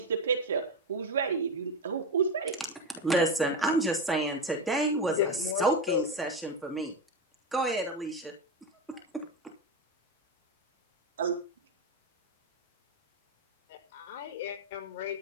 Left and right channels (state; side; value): normal; both; correlation 0.16